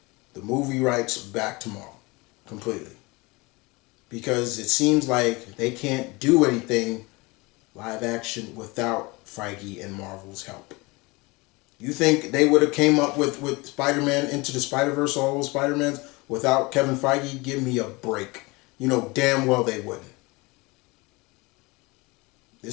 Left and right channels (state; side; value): quieter; right; 24.7 dB